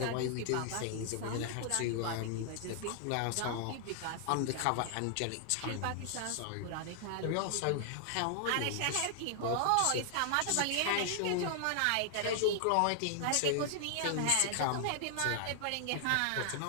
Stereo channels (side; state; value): both; different; correlation 0.00